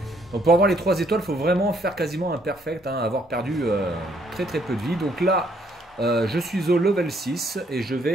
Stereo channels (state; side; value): normal; both; correlation 0.68